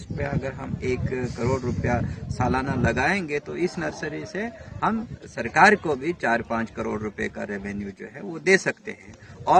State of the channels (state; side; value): identical; both; correlation 1.00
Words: पे अगर हम 1 करोड़ रुपया सालाना लगाएंगे तो इस नर्सरी से हम सरकार को भी 4-5 करोड़ रुपए का रेवेन्यू जो है वो दे सकते हैं।